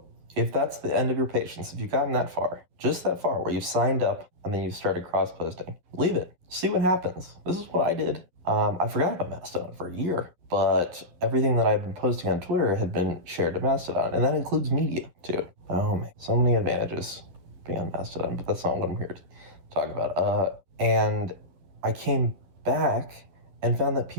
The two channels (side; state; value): left; late; 11 ms